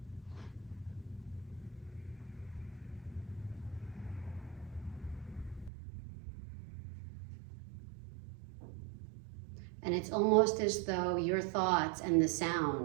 And it's almost as though your thoughts and the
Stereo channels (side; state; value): left; drops out; at 5.7 s